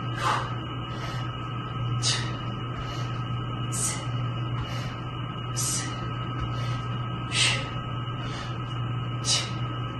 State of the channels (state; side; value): identical; both; correlation 1.00